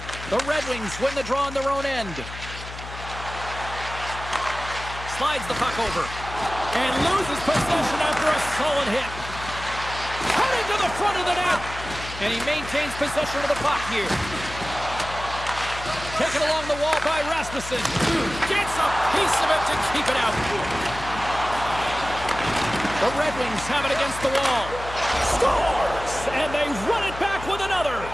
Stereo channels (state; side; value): noise; left; hum, 12 dB below the sound